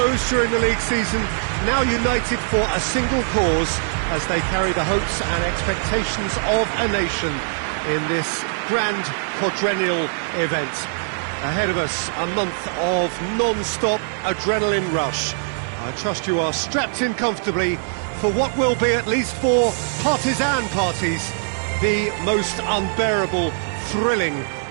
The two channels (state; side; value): silent; left; digital silence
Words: during the league season, now united for a single cause as they carry the hopes and expectations of a nation in this grand quadrennial event. Ahead of us, a month of non-stop adrenaline rush. I trust you are strapped in comfortably for what will be, at least for partisan parties, the most unbearable, thrilling